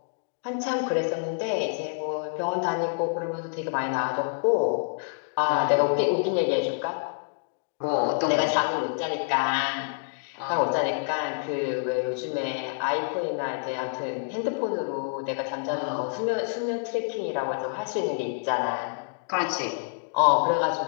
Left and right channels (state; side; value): silent; right; digital silence